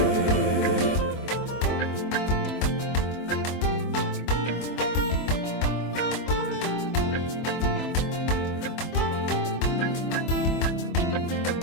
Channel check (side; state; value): right; late; 24 ms